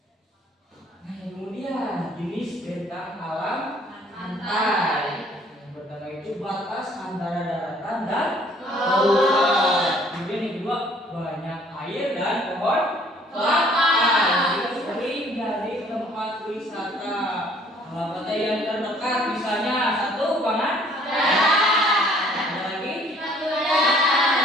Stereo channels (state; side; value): normal; both; correlation 0.58